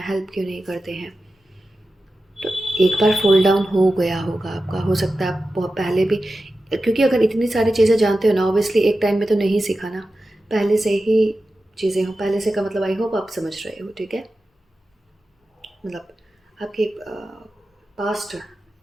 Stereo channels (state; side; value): normal; both; correlation 0.93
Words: हेल्प क्यों नहीं करते हैं। तो एक बार फॉल डाउन हो गया होगा आपका, हो सकता है आप बहुत पहले भी, क्योंकि अगर इतनी सारी चीज़ें जानते हो ना, ऑब्वियसली एक टाइम में तो नहीं सीखा ना, पहले से ही चीज़ें हो, पहले से का मतलब आई होप आप समझ रहे हो, ठीक है। मतलब आपके पास्ट